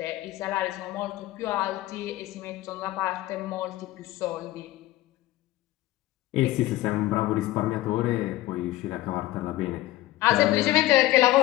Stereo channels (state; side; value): quieter; right; 16.4 dB